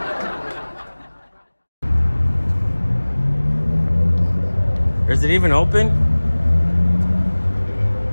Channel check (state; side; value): inverted; both; correlation -1.00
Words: Is it even open?